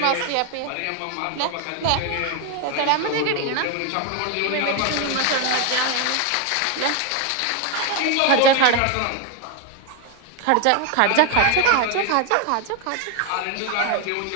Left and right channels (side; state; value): both; different; correlation 0.01